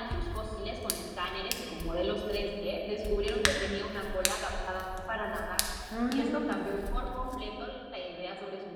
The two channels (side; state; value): both; identical; correlation 1.00